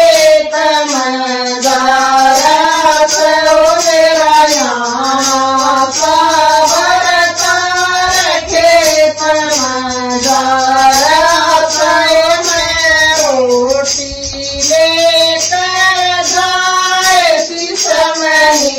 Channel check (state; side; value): identical; both; correlation 1.00